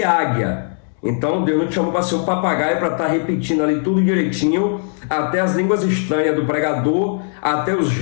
águia. Então Deus não te chamou para ser um papagaio, para estar repetindo ali tudo direitinho, até as línguas estranhas do pregador, até o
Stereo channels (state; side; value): silent; right; 61 dB below the other